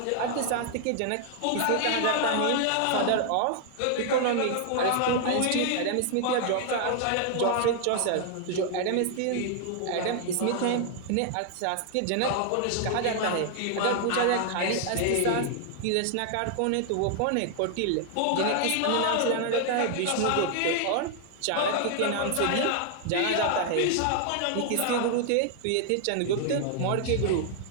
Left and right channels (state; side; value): different; both; correlation 0.00